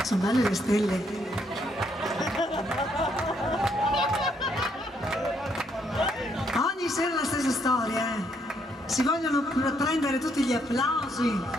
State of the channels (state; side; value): normal; both; correlation 0.72